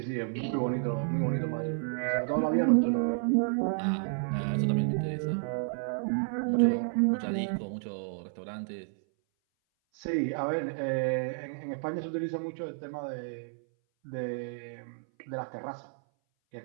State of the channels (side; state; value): left; silent; 57 dB below the other